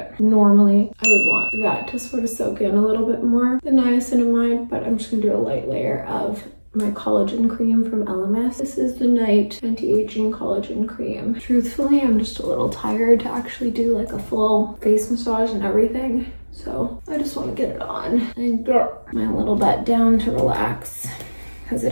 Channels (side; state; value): both; inverted; correlation -1.00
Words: Normally, I would want that to sort of soak in a little bit more, the niacinamide, but I'm just gonna do a light layer of my collagen cream from LMS. This is the Night Anti-Aging Collagen Cream. Truthfully, I'm just a little tired to actually do like a full face massage and everything. So I just want to get it on and get my little butt down to relax because it